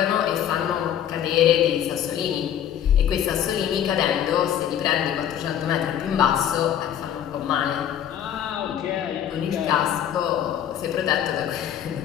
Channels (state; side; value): quieter; right; 10.0 dB